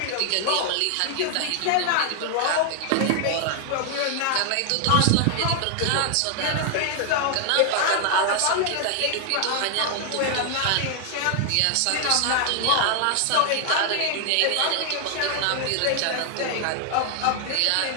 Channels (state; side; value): different; both; correlation 0.00